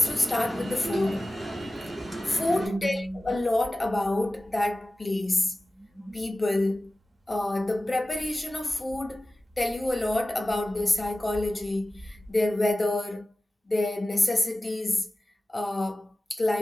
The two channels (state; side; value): normal; both; correlation 0.96